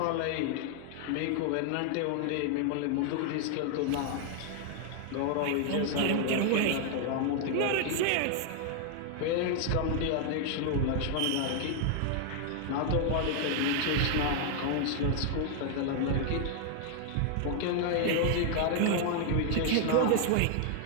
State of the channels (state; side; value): different; both; correlation 0.00